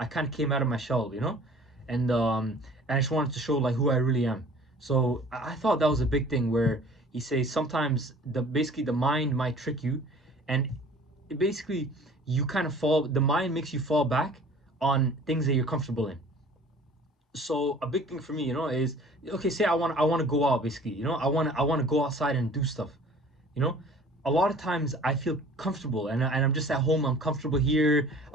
kind of came out of my shell, you know, and I just wanted to show like who I really am. So I thought that was a big thing where he says sometimes basically the mind might trick you, and basically you kind of fall. The mind makes you fall back on things that you're comfortable in. So a big thing for me, you know, is okay. Say I want to go out, basically, you know, I want to go outside and do stuff, you know. A lot of times I feel comfortable, and I'm just at home. I'm comfortable here.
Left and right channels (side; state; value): both; normal; correlation 0.48